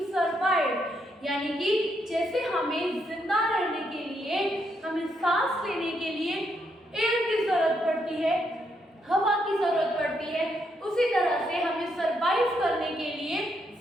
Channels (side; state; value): both; normal; correlation 0.77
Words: survive. यानी कि जैसे हमें जिंदा रहने के लिए, हमें सांस लेने के लिए एयर की जरूरत पड़ती है, हवा की जरूरत पड़ती है, उसी तरह से हमें सरवाइव करने के लिए